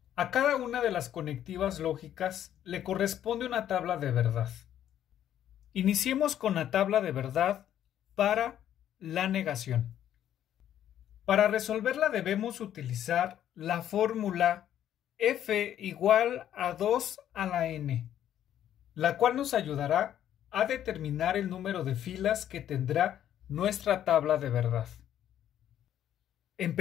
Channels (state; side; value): quieter; right; 10.9 dB